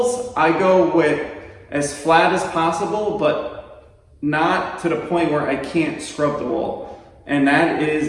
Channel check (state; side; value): identical; both; correlation 1.00